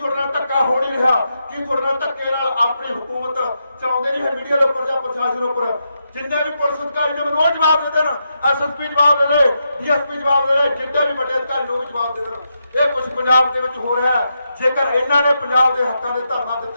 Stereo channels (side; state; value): both; inverted; correlation -0.84